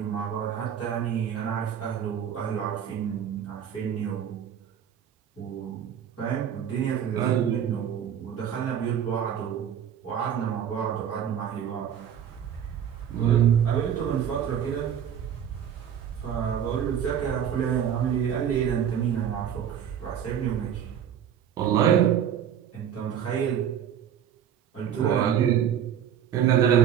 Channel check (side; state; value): left; quieter; 9.0 dB